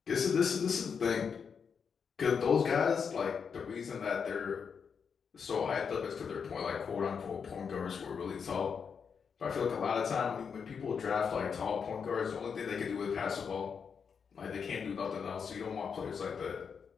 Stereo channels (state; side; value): quieter; right; 6.4 dB